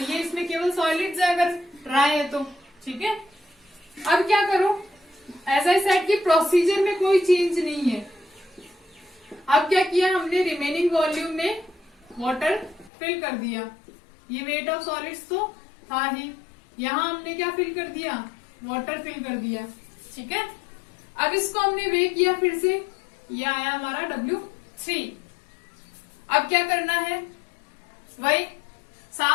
ये इसमें केवल सॉलिड्स है अगर ड्राई है तो। ठीक है, अब क्या करो? एज आई सेड की प्रोसीजर में कोई चेंज नहीं है। अब क्या किया हमने? रिमेनिंग वॉल्यूम में वाटर फिल कर दिया। ये वेट ऑफ सॉलिड्स तो था ही, यहाँ हमने क्या फिल कर दिया? वाटर फिल कर दिया। ठीक है, अब इसको हमने वे किया फिर से, ये आया हमारा W3। अब क्या करना है? वही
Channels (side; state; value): right; drops out; at 12.9 s